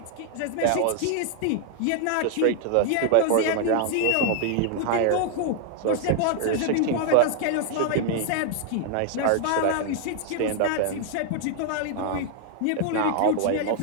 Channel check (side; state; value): both; different; correlation 0.00